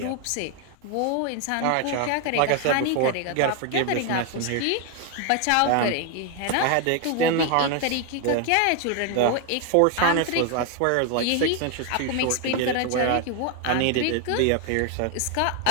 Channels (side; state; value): both; different; correlation 0.01